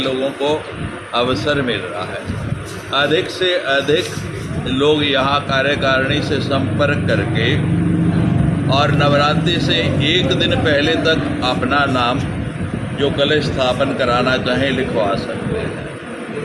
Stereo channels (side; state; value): both; identical; correlation 1.00